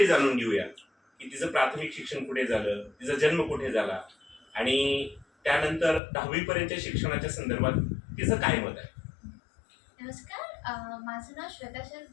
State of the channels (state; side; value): drops out; right; at 6.0 s